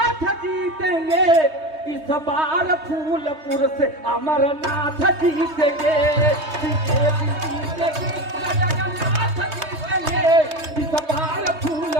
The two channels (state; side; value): late; left; 3.2 ms